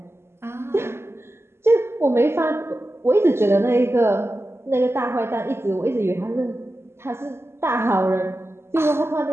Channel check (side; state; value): left; late; 0.12 ms